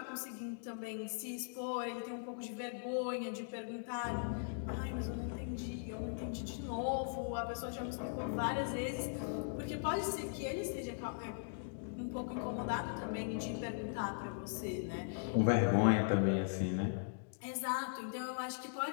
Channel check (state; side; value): silent; right; digital silence